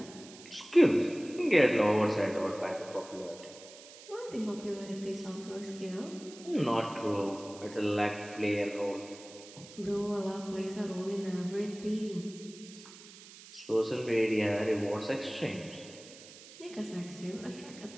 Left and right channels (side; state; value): right; noise; hiss, 18 dB below the sound